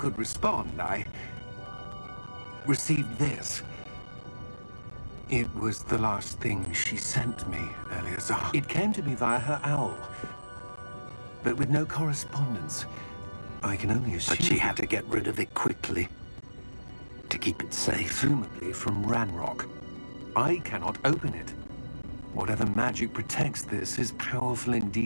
respond, I received this. It was the last thing she sent me, Eleazar. It came to me via her owl, but with no correspondence. I can only assume... But she had to get rid of it quickly. To keep it safe. Presumably from Ranrock. I cannot open it. Whatever magic protects this is powerful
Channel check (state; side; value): inverted; both; correlation -1.00